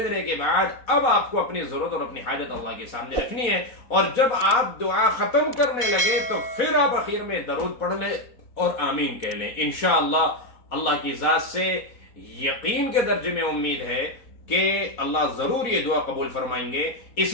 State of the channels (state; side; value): late; right; 4.1 ms